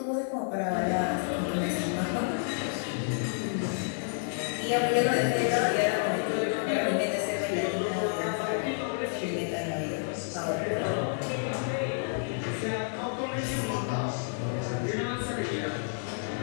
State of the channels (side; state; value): right; silent; digital silence